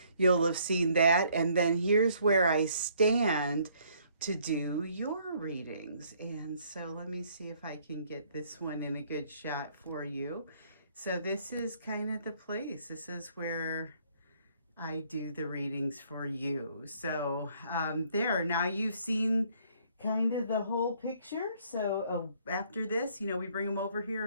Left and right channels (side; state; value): both; inverted; correlation -0.64